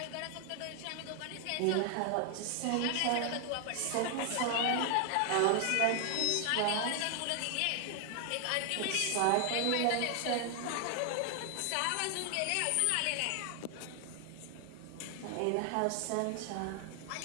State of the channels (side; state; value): both; different; correlation 0.00